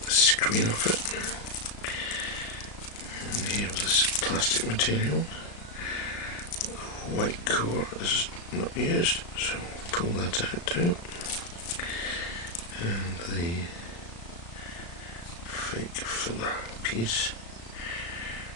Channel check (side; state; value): right; late; 35 ms